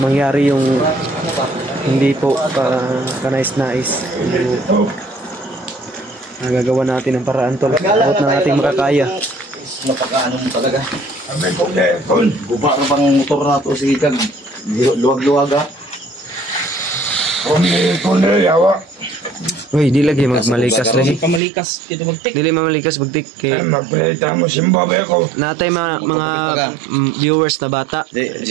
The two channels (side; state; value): left; drops out; at 21.4 s